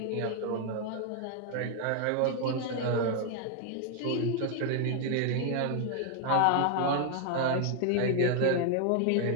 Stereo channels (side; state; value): both; different; correlation 0.00